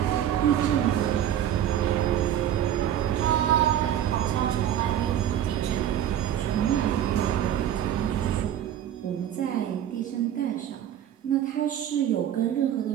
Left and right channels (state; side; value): quieter; left; 10.8 dB